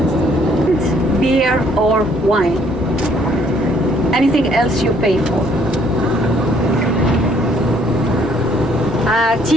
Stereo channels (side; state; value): both; normal; correlation 0.64